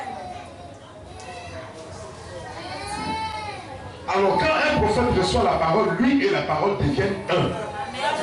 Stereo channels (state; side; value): identical; both; correlation 1.00